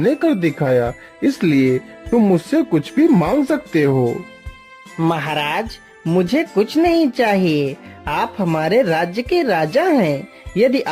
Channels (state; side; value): identical; both; correlation 1.00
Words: कर दिखाया, इसलिए तुम मुझसे कुछ भी मांग सकते हो। महाराज, मुझे कुछ नहीं चाहिए। आप हमारे राज्य के राजा हैं। यदि